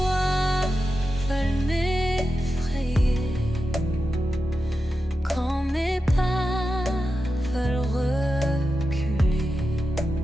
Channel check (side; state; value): both; normal; correlation 0.91